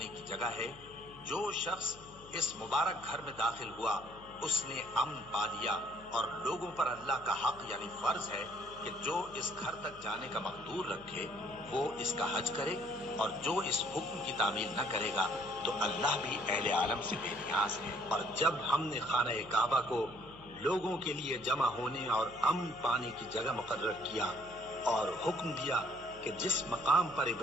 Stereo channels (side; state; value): left; noise; hum, 21 dB below the sound